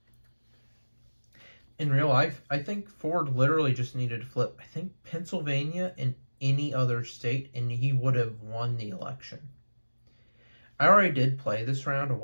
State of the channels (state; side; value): inverted; both; correlation -1.00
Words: In real life, I think Ford literally just needed to flip, I think, Pennsylvania and any other state, and he would have won the election. I already did play this round a